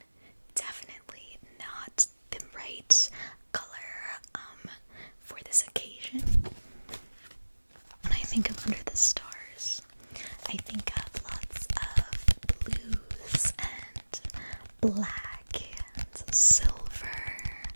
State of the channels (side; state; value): both; inverted; correlation -1.00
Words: definitely not the right color for this occasion. When I think of Under the Stars, I think of lots of blues and black and silver,